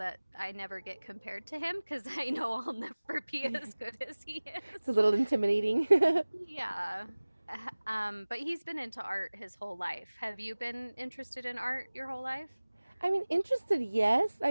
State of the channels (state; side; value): inverted; both; correlation -1.00